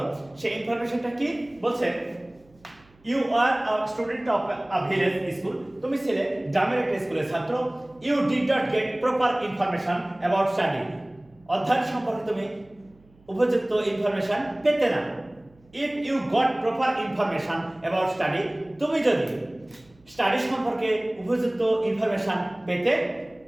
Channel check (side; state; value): right; noise; hum, 30 dB below the sound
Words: সেই ইনফরমেশনটা কি বলছে? You are a student of a village school, তুমি ছিলে গ্রামের একটা স্কুলের ছাত্র। You did not get proper information about study, অধ্যয়ন সম্পর্কে তুমি উপযুক্ত ইনফরমেশন পেতে না। If you got proper information about study, তুমি যদি স্টাডি সম্পর্কে উপযুক্ত ইনফরমেশন পেতে,